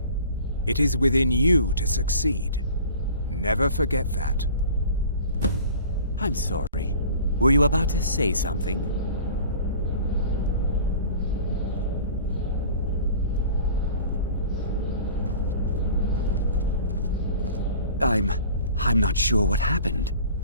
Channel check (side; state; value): both; inverted; correlation -0.44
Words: It is within you to succeed. Never forget that. I'm sorry. Were you about to say something? I'm not sure what happened.